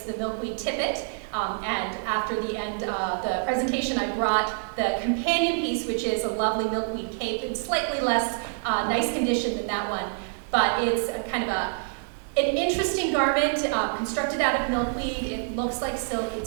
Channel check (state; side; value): silent; left; digital silence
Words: the milkweed tippet. And after the end of the presentation, I brought the companion piece, which is a lovely milkweed cape in slightly less nice condition than that one. But it's kind of an interesting garment constructed out of milkweed. It looks like silk.